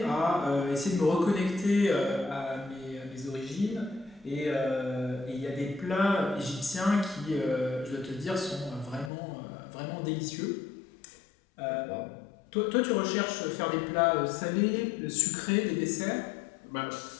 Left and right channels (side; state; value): right; drops out; at 9.1 s